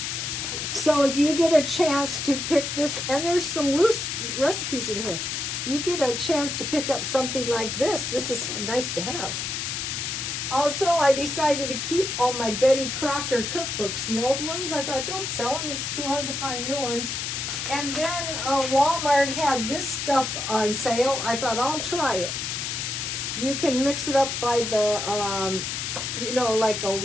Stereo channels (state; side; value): noise; left; hiss, 3 dB below the sound